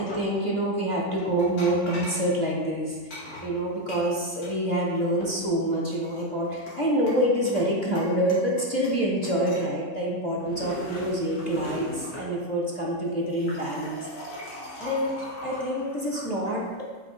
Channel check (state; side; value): late; right; 2.6 ms